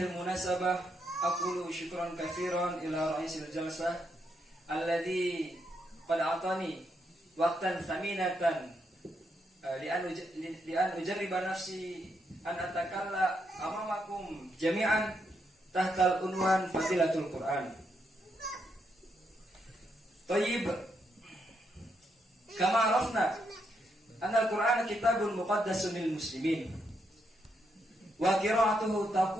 al-munasabah aqulu syukran katsiran ila ra'isil jalsah alladhi qad atani waqtan thaminatan li an ujarriba nafsi an atakalla amamakum jami'an tahta al-unwan fadilatul Qur'an. Tayyib, kama arafna anna al-Qur'an kitabun muqaddasun lil muslimin wa qira'atuhu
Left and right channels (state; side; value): normal; both; correlation 0.79